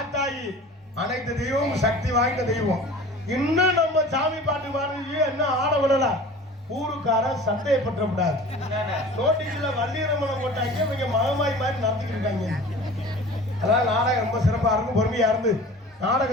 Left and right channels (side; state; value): both; normal; correlation 0.41